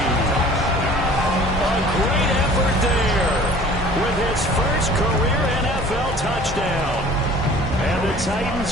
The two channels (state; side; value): normal; both; correlation 0.48